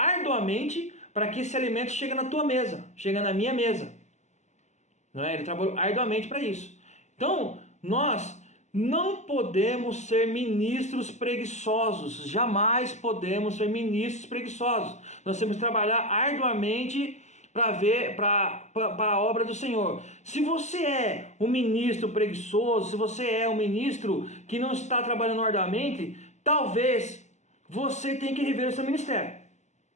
para que esse alimento chegue na tua mesa, chegue na minha mesa. Não é? Ele trabalhou arduamente para isso. Então, nós não podemos ser ministros preguiçosos. Jamais podemos ser ministros preguiçosos. Nós temos que trabalhar arduamente para a obra do Senhor. Se você é um ministro preguiçoso, se você é um ministro que não está trabalhando arduamente, talvez você tenha que rever o seu ministério.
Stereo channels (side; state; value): right; late; 0.34 ms